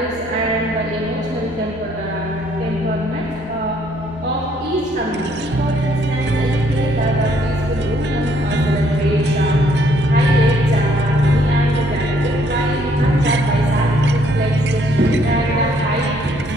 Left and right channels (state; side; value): normal; both; correlation 0.66